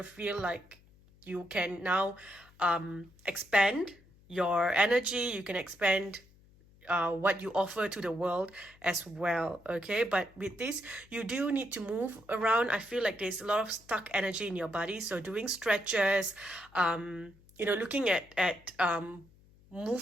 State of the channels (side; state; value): left; noise; hum, 27 dB below the sound